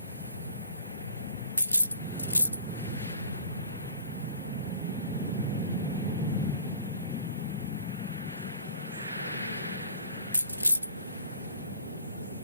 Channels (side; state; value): both; inverted; correlation -0.49